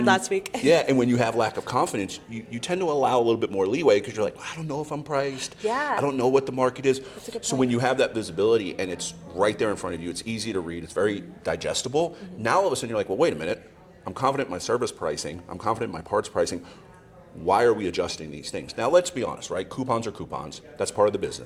last week. Yeah, and when you have lack of confidence, you tend to allow a little bit more leeway because you're like, I don't know if I'm priced. Yeah. I don't know what the market is. That's a good So point. when you have that visibility and it's right there in front of you, it's easy to read, it's very digestible. Now all of a sudden you're like, well, wait a minute. I'm confident in my service pricing. I'm confident in my parts pricing. Why are we adjusting these things? Now, let's be honest, right? Coupons are coupons. That's part of the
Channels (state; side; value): identical; both; correlation 1.00